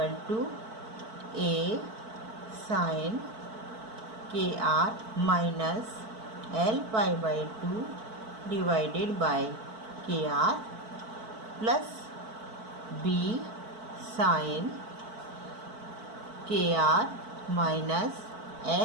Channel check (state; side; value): late; left; 4.5 ms